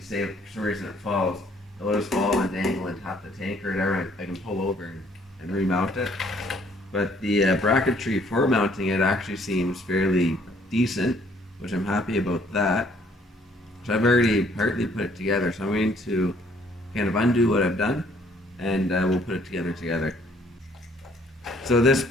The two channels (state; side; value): normal; both; correlation 0.63